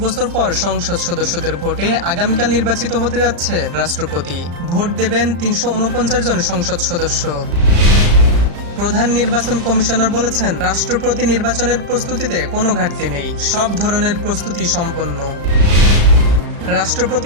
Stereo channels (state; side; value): late; left; 35 ms